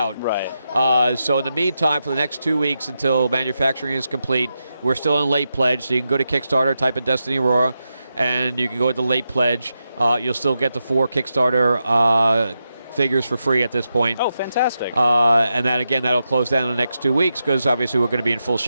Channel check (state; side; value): inverted; both; correlation -0.87